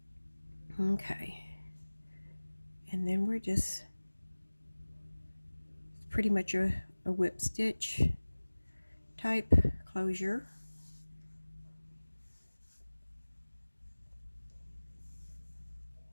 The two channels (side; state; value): both; inverted; correlation -1.00